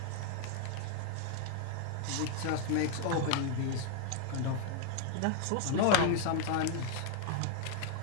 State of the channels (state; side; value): different; both; correlation 0.00